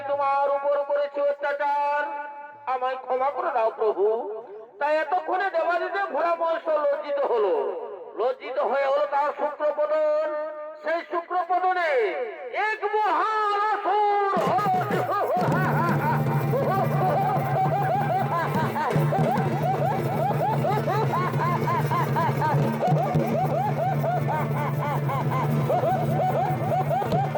তোমার উপর করেছি অত্যাচার। আমায় ক্ষমা করে দাও প্রভু। তাই এতক্ষণে দেবাদিদেব ভোলা মহেশ্বর লজ্জিত হলো। লজ্জিত হয়ে হলো তার শুক্রপদন। সেই শুক্রপদনে এক মহান অসুর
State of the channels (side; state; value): both; identical; correlation 1.00